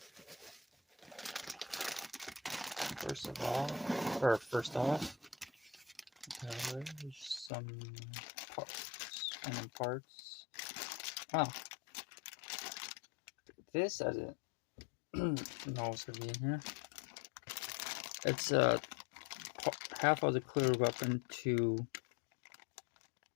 First off, there's some parts. Wow. This I didn't know was gonna be in here. It's half of the clear weapon to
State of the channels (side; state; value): right; drops out; at 7.5 s